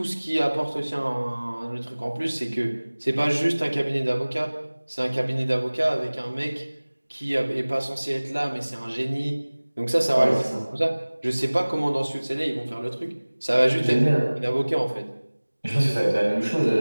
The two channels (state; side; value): inverted; both; correlation -1.00